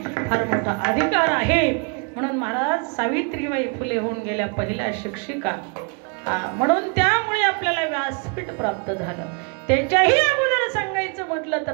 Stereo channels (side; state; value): left; quieter; 36.6 dB